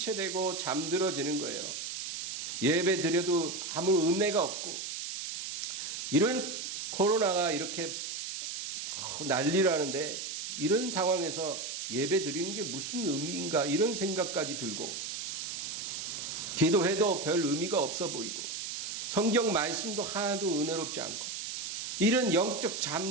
잠들어지는 거예요. 예배 드려도 아무 은혜가 없고, 이런 코로나가 이렇게 난리라는데 이런 상황에서 예배 드리는 게 무슨 의미인가 이런 생각까지 들고, 기도해도 별 의미가 없어 보이고 성경 말씀도 하나도 은혜롭지 않고 이런 영적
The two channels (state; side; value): noise; right; hiss, 5 dB below the sound